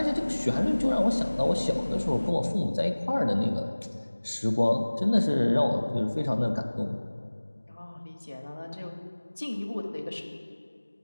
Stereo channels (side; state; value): both; inverted; correlation -1.00